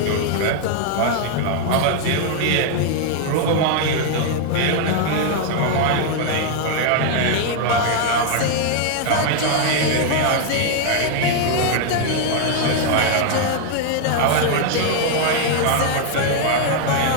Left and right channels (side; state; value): both; different; correlation 0.00